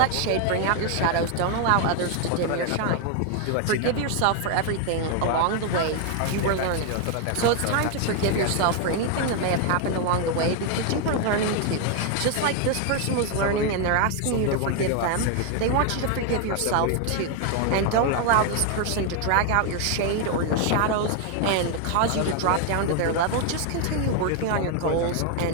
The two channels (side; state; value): both; different; correlation 0.00